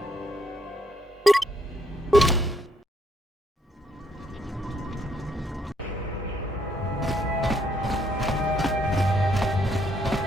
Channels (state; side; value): normal; both; correlation 0.71